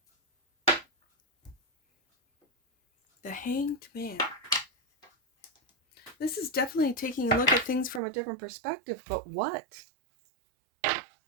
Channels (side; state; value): left; drops out; at 8.0 s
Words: The Hanged Man. This is definitely taking a look at things from a different perspective, but what?